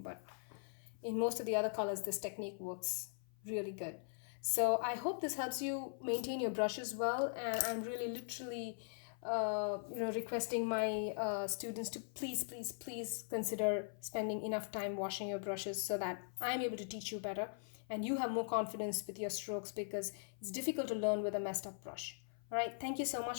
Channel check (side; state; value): right; silent; 51 dB below the other